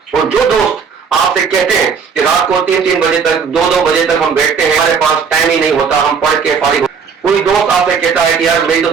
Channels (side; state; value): left; quieter; 6.1 dB